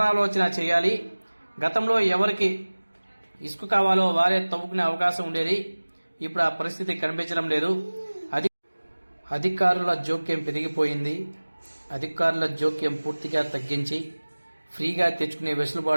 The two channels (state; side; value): inverted; both; correlation -1.00